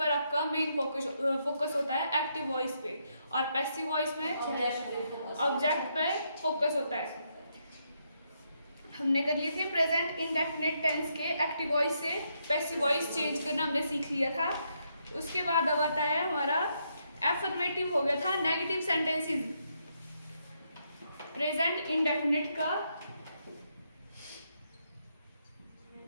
आपका मेन फोकस होता है एक्टिव वॉइस पे। और पैसिव वॉइस में ऑब्जेक्ट पे फोकस होता है। हमने कर लिए थे प्रेजेंट इंडेफिनिट टेंस के एक्टिव वॉइस से पैसिव वॉइस चेंज करना हमने सीख लिया था। उसके बाद अब आता है हमारा एफर्मेटिव हो गया था नेगेटिव सेंटेंसेस। प्रेजेंट इंडेफिनिट का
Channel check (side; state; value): both; inverted; correlation -0.78